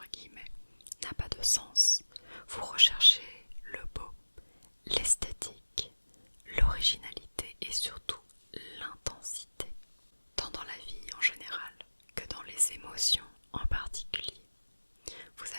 guillemets, n'a pas de sens. Vous recherchez le beau, l'esthétique, l'originalité et surtout l'intensité, tant dans la vie en général que dans les émotions en particulier. Vous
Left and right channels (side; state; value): both; inverted; correlation -1.00